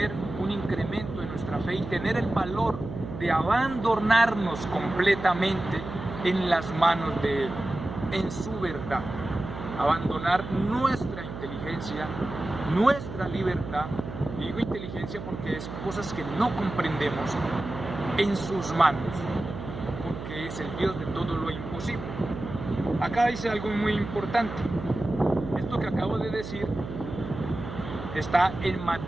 un incremento en nuestra fe y tener el valor de abandonarnos completamente en las manos de Él, en su verdad. Abandonar nuestra inteligencia, nuestra libertad, digo inteligencia porque es cosas que no comprendemos, en sus manos, porque es el Dios de todo lo imposible. Acá dice algo muy importante. Esto que acabo de decir está en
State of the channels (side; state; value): right; noise; hum, 9 dB below the sound